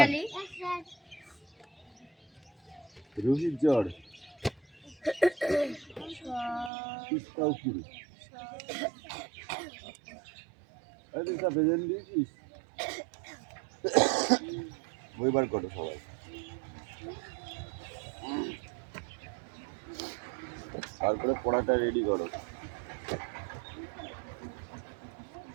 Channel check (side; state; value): left; drops out; at 6.7 s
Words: রোহিত জড়, তিস্তা উকিল। দিয়েছিস? বই বার করো সবাই। তারপরে পড়াটা রেডি করো।